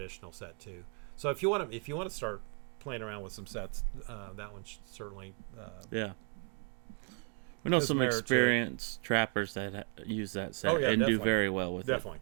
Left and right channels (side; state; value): left; quieter; 39.3 dB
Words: set too. So if you want to start playing around with some sets, that one should certainly we know some experienced trappers that use that set and definitely. do very well with definitely,